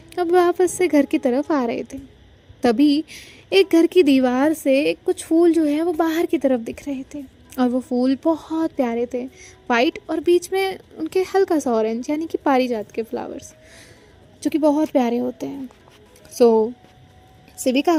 अब वापस से घर की तरफ आ रहे थे। तभी एक घर की दीवार से कुछ फूल जो है वो बाहर की तरफ दिख रहे थे और वो फूल बहुत प्यारे थे, वाइट और बीच में उनके हल्का सा ऑरेंज यानी कि पारिजात के फ्लावर्स जो कि बहुत प्यारे होते हैं। शिविका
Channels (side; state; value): both; identical; correlation 1.00